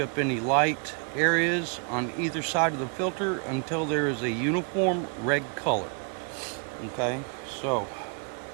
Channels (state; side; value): quieter; left; 39.0 dB